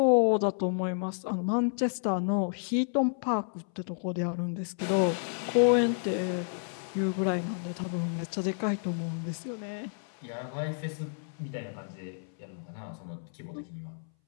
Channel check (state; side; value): silent; right; 57 dB below the other